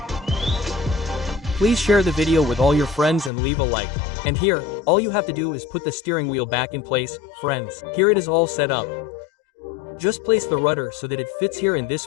Please share the video with all your friends and leave a like. And here, all you have to do is put the steering wheel back in place, friends. Here it is all set up. Just place the rudder so that it fits here in this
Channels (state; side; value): drops out; right; at 3.3 s